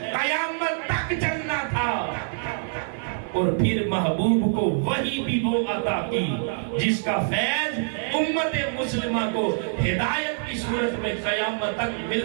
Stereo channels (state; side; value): silent; left; 62 dB below the other